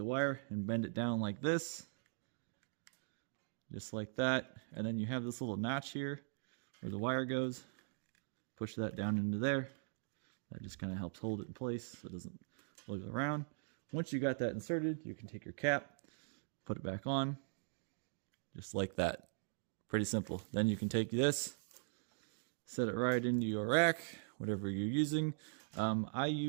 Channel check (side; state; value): left; silent; digital silence